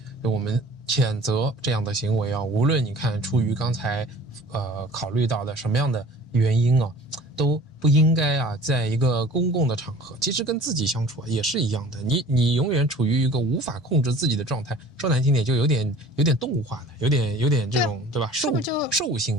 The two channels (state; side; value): normal; both; correlation 0.46